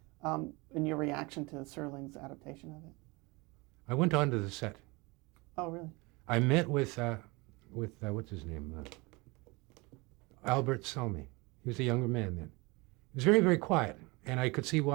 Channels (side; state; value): left; quieter; 25.5 dB